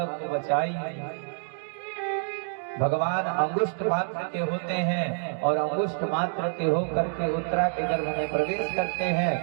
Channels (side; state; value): left; silent; digital silence